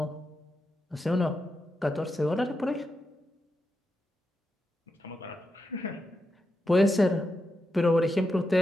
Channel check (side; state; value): both; normal; correlation 0.87